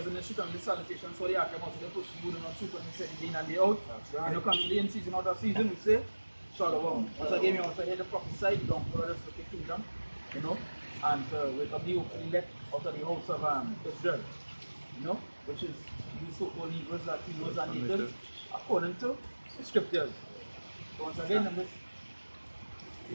in the street and the salutation, so they are come out to the push you do not shoot when they say the day and day out. When you come to the in season or the season, we say, Shalom. Once again, we also hear the prophesy, don't follow us with the kingdom, you know, and wake up the elect out of the house of Israel, you know, which is the so-called Hebrews, Latinos, and natives, according to the scriptures. So once again, I'm just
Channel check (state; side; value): inverted; both; correlation -1.00